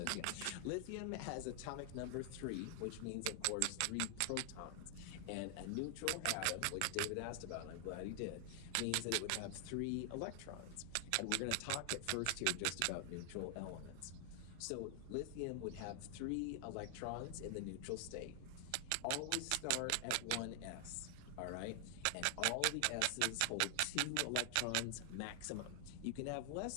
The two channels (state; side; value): different; both; correlation 0.00